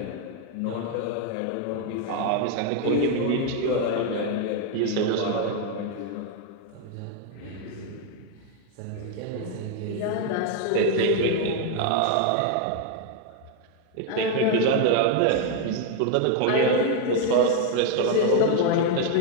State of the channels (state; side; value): different; both; correlation 0.01